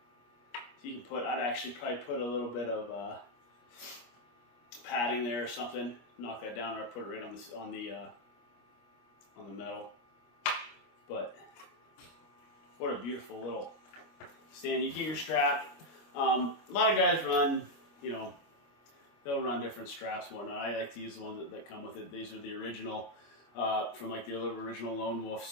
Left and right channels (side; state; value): right; late; 25 ms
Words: So you can put, I'd actually probably put a little bit of padding there or something. Knock that down, or I put it right on the metal. But what a beautiful little stand. You get your strap. A lot of guys run, you know, they'll run different straps and whatnot. I like to use the ones that come with it. These are the original, from like the original Lone